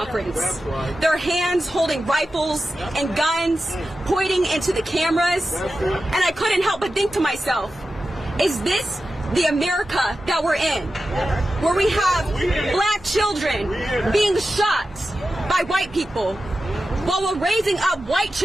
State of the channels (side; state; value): both; normal; correlation 0.92